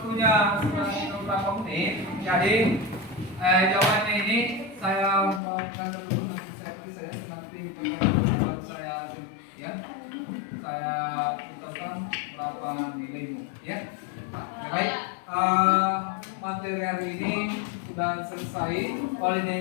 sudah beberapa menit, jadi jawabannya ini saya berikan dulu, nanti saya nanti pertanyaan saya ya, saya beritahukan berapa nilaimu ya. Baik, materi hari ini sudah selesai.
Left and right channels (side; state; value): right; drops out; at 5.4 s